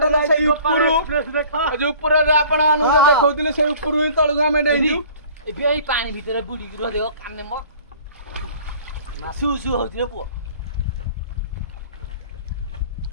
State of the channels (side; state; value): both; inverted; correlation -0.49